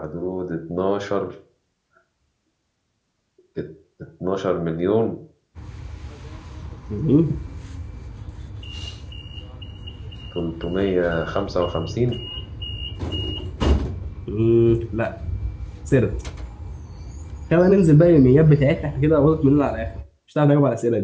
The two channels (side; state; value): both; identical; correlation 1.00